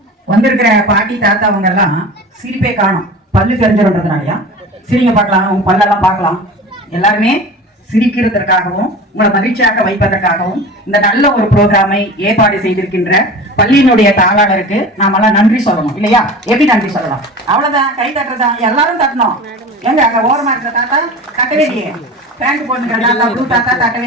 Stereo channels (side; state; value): both; normal; correlation 0.35